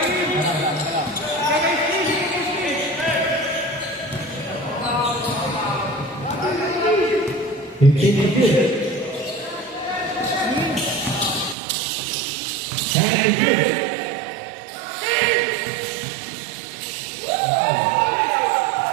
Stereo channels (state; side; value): drops out; left; at 11.6 s